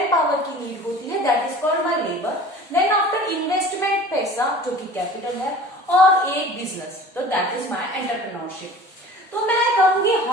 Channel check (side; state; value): both; normal; correlation 0.42